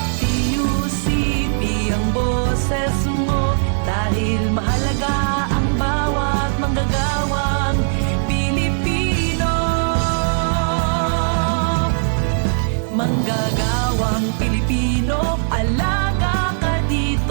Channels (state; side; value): silent; left; digital silence